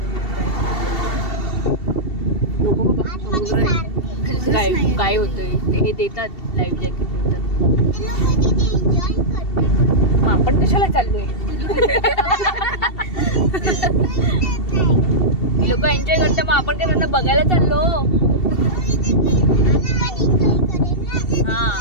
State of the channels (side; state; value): right; late; 2.7 ms